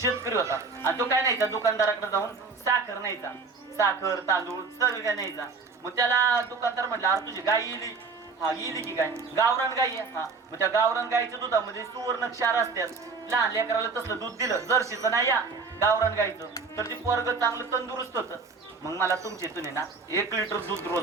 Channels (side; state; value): left; quieter; 4.6 dB